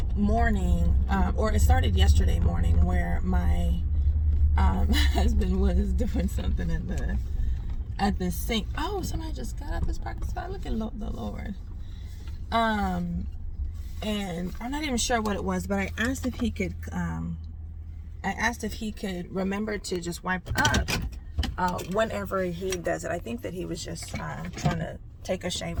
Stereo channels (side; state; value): both; identical; correlation 1.00